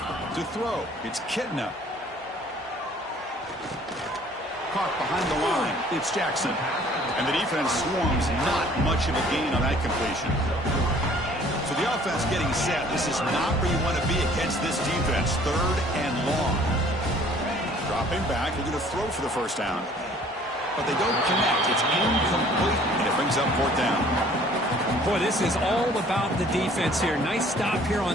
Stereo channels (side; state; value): both; normal; correlation 0.55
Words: To throw, it's Kitna. Caught behind the line, it's Jackson. And the defense swarms, not much of a gain on that completion. So the offense getting set. This is not where you want to be against this defense. 3rd and long. Dropping back, they're going to throw for the 1st down. But they don't connect. It's incomplete, and it brings up 4th down. Boy, this is all about the defense here. Nice stop here